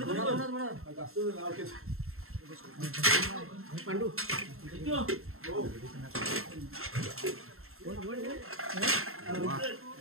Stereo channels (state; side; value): late; left; 0.62 ms